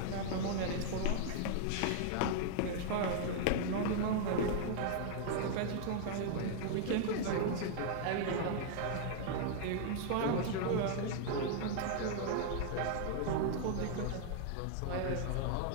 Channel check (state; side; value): different; both; correlation -0.01